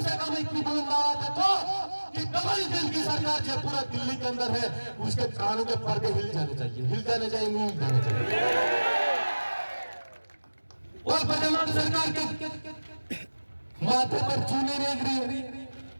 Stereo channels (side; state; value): both; inverted; correlation -1.00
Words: से कम इतनी बुलंद आवाज देखो कि डबल इंजन की सरकार जो पूरा दिल्ली के अंदर है, उसके कानों के पर्दे हिल जाने चाहिए, नहीं हिल जाने चाहिए। और वर्तमान सरकार के माथे पर चूने नहीं गिरी।